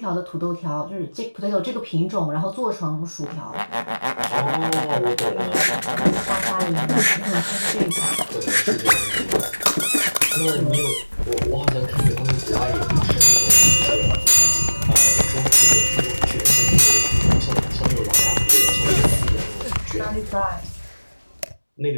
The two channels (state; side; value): inverted; both; correlation -1.00